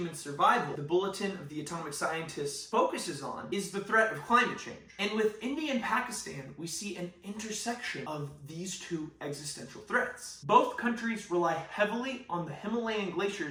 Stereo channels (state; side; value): identical; both; correlation 1.00